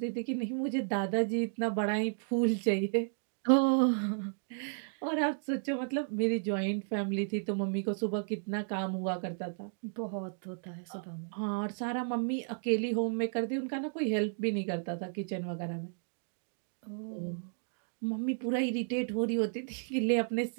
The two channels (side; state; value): left; silent; digital silence